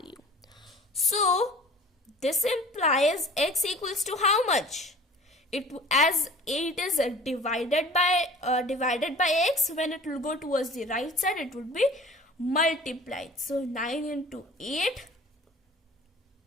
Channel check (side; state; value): both; normal; correlation 0.45